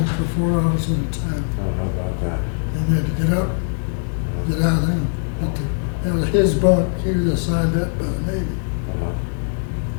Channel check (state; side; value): silent; right; 65 dB below the other